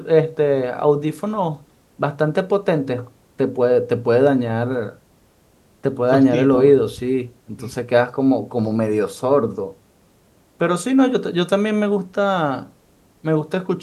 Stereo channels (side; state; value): both; identical; correlation 1.00